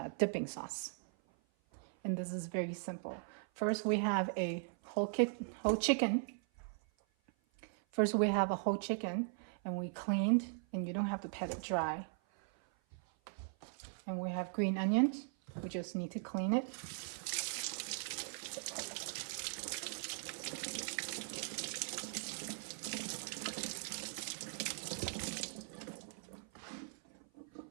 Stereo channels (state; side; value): silent; left; 51 dB below the other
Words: dipping sauce. And this is very simple. First we have a whole chicken. First we have a whole chicken, and we cleaned, and you don't have to pat it dry. And we have green onions. We just need to clean it.